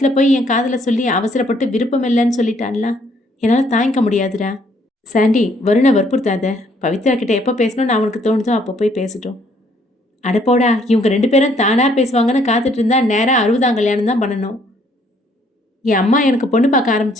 போய் என் காதில் சொல்லி அவசரப்பட்டு விருப்பம் இல்லைன்னு சொல்லிட்டான்ல, என்னால் தாங்கிக்க முடியாதுடா. சாண்டி, வருணை வற்புறுத்தாத. பவித்ரா கிட்ட எப்போ பேசணும்னு அவனுக்கு தோணுதோ அப்போ போய் பேசட்டும். அடப்போடா, இவங்க 2 பேரும் தானாக பேசுவாங்கன்னு காத்துட்டு இருந்தா நேராக 60ஆம் கல்யாணம் தான் பண்ணணும். என் அம்மா எனக்கு பொண்ணு பார்க்க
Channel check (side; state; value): both; normal; correlation 0.66